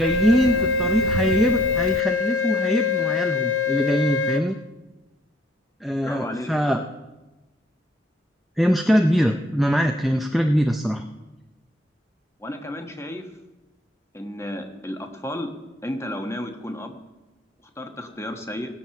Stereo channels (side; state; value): both; normal; correlation 0.62